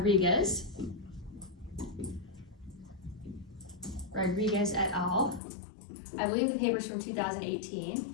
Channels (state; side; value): drops out; right; at 5.4 s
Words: et al. I believe the paper's from